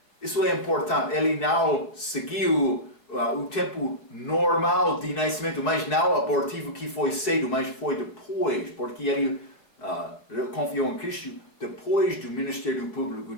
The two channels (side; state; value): right; late; 4.6 ms